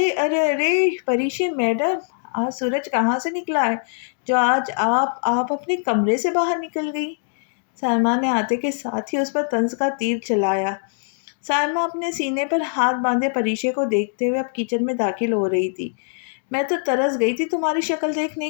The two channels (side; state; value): right; silent; digital silence